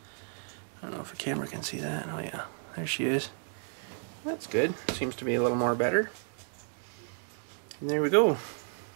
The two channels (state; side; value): silent; left; 56 dB below the other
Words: I don't know if the camera can see that. Oh yeah, there she is. That's good. Seems to be a little more better. And there we go.